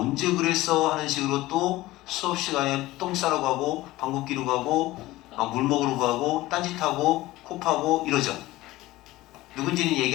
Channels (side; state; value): right; quieter; 17.8 dB